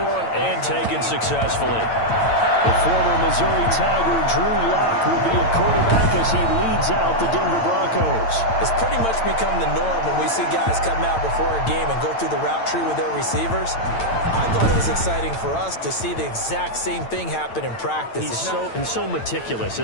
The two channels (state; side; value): late; right; 8.9 ms